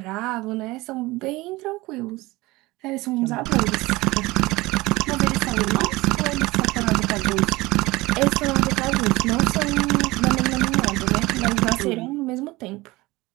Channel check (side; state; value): left; quieter; 20.7 dB